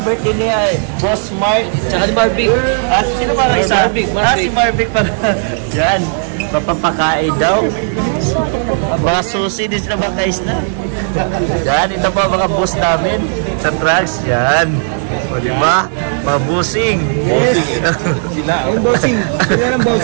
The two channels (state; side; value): silent; left; digital silence